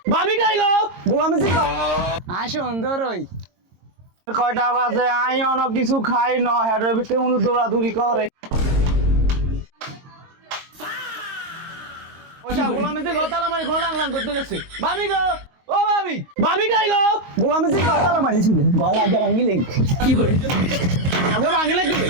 ভাবি কই গো? গোলামি জি আয় সুন্দর ওই কয়টা বাজে আই অনেক কিছু খাই ন হেডের ভিতরে উনি দৌড়াদৌড়ি করে। ওইটা গোলামি জি গতালা মারি ঘোলা লাং করতে গেছে। ভাবি গো, ও ভাবি, ভাবি কই গো? গোলামি জি গতালা মারিছে গলা যা ভাঙিলে কি করে আগে ভাঙিলে কি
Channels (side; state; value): left; late; 23 ms